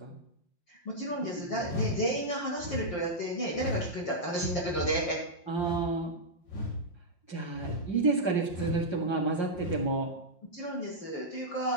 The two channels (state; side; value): late; right; 5.6 ms